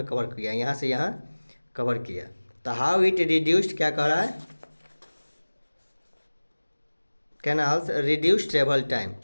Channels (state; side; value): inverted; both; correlation -1.00